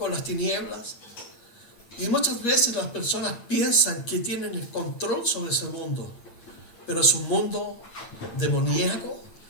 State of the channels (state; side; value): late; right; 8.8 ms